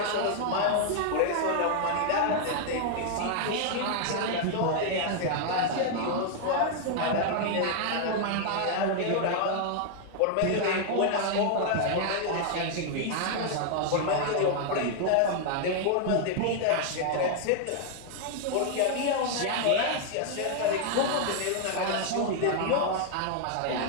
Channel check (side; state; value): both; different; correlation 0.00